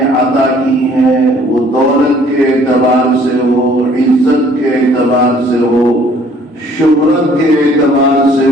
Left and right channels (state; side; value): normal; both; correlation 0.58